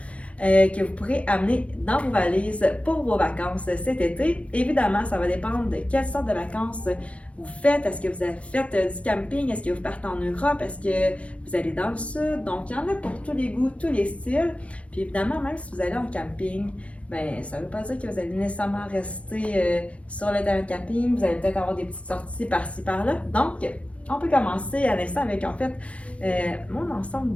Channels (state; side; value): late; right; 0.063 ms